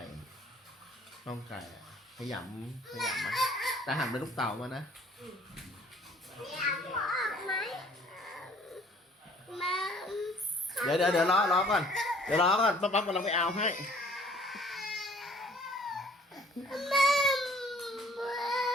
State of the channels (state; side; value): normal; both; correlation 0.56